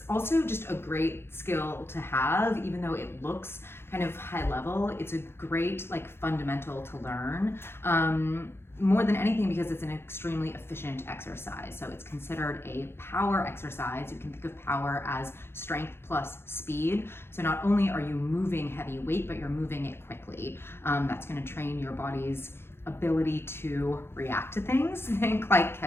also just a great skill to have, even though it looks kind of high level. It's a great fundamental to learn. More than anything because it's an extremely efficient exercise. So it's considered a power exercise. You can think of power as strength plus speed. So not only are you moving heavy weight, but you're moving it quickly. That's going to train your body's ability to react to things. Think like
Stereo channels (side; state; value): right; late; 0.12 ms